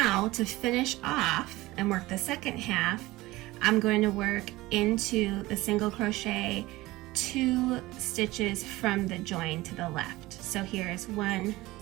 to finish off and work the second half, I'm going to work into the single crochet 2 stitches from the join to the left. So here's 1,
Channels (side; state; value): left; quieter; 19.1 dB